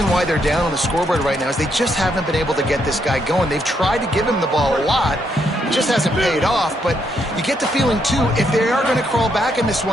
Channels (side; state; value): both; normal; correlation 0.76